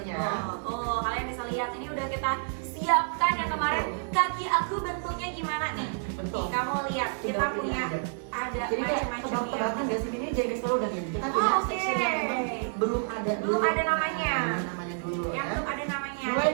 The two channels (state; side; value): silent; left; digital silence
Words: betul. Tuh, kalian bisa lihat ini udah kita siapkan yang kemarin kaki aku bentuknya gimana nih. Betul. Nih, kamu lihat kita Tinggal pilih punya aja. ada Jadi kayak macam-macam tebak-tebakan ya. gak sih ini jadi selalu dan ini kita Oh, punya oke. section yang memang belum ada Belum dulu. ada namanya. Nah, namanya dulu Yang ya. belum ada namanya. Mulai